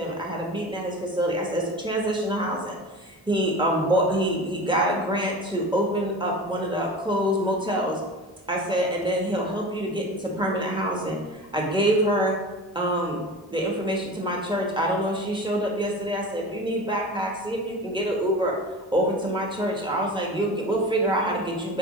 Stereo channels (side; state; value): both; normal; correlation 0.33